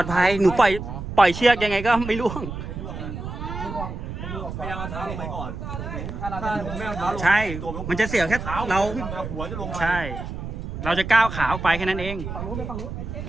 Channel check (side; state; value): right; noise; rumble, 7 dB below the sound